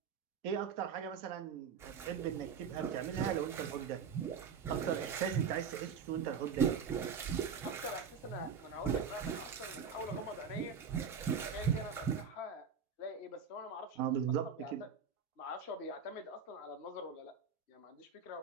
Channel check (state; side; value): quieter; left; 6.3 dB